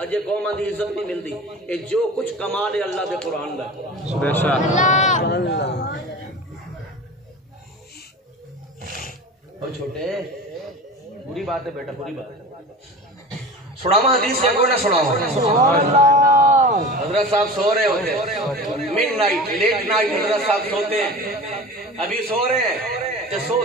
قوم دی عزت نہیں ملتی اے جو کچھ کمال ہے اللہ دے قرآن دا بے شک اور چھوٹے بری بات ہے بیٹا بری بات ہے سناوا حدیث سے کوئی نہ سناوا حضرت صاحب سو رہے ہوتے مڈ نائٹ لیٹ نائٹ حضرت صاحب سوتے ہیں ابھی سو رہے ہیں تے سو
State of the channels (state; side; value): normal; both; correlation 0.34